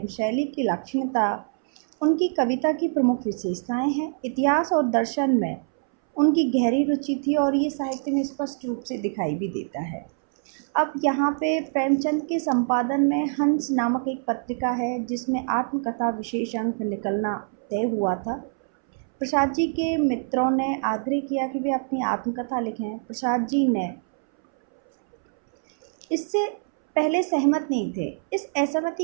शैली की लाक्षणिकता उनकी कविता की प्रमुख विशेषताएं हैं। इतिहास और दर्शन में उनकी गहरी रुचि थी और ये साहित्य में स्पष्ट रूप से दिखाई भी देता है। अब यहाँ पे प्रेमचंद के संपादन में हंस नामक एक पत्रिका है जिसमें आत्मकथा विशेष अंक निकलना तय हुआ था। प्रसाद जी के मित्रों ने आग्रह किया कि वे अपनी आत्मकथा लिखें। प्रसाद जी ने इससे पहले सहमत नहीं थे। इस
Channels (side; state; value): left; silent; 62 dB below the other